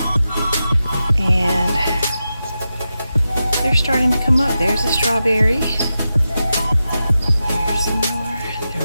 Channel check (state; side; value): inverted; both; correlation -0.91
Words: and they're starting to come up. There's a strawberry. There's some more.